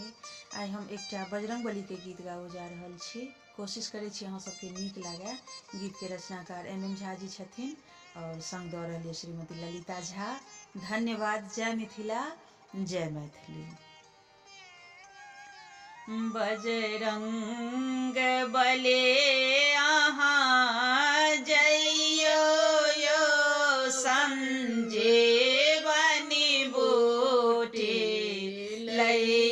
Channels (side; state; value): both; identical; correlation 1.00